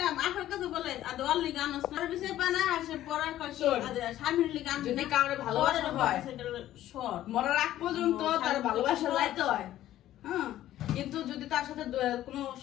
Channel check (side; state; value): right; quieter; 13.3 dB